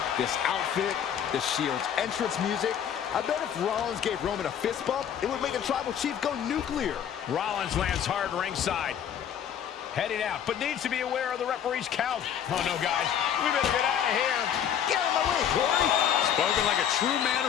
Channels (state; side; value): quieter; right; 9.1 dB